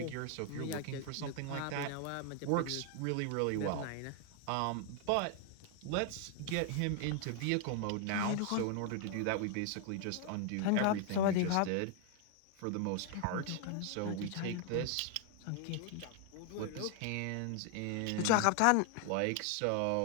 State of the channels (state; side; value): different; both; correlation 0.00